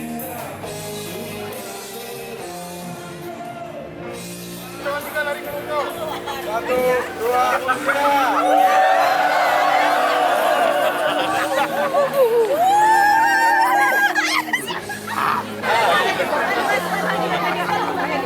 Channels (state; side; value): identical; both; correlation 1.00